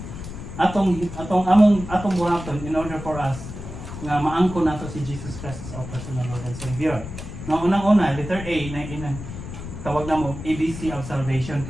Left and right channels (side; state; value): left; noise; rumble, 10 dB below the sound